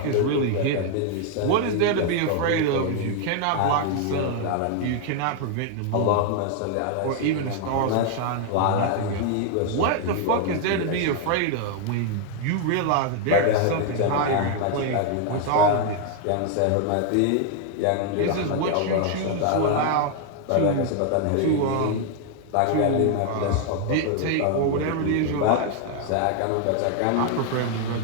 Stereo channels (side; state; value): both; different; correlation 0.00